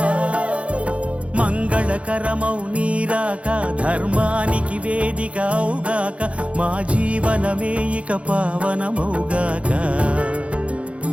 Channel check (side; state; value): left; late; 0.062 ms